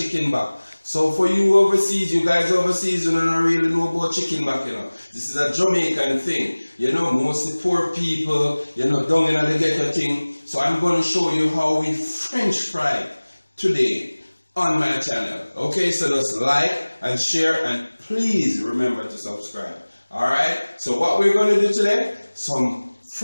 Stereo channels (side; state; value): both; inverted; correlation -1.00